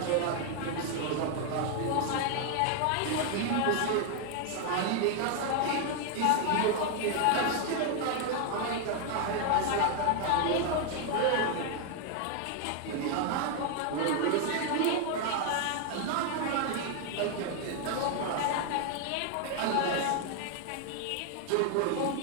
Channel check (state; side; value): different; both; correlation 0.00